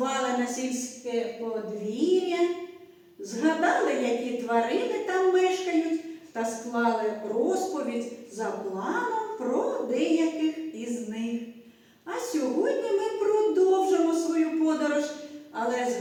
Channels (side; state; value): both; identical; correlation 1.00